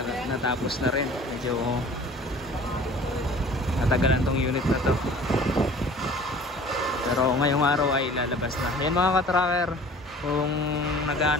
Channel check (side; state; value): both; normal; correlation 0.47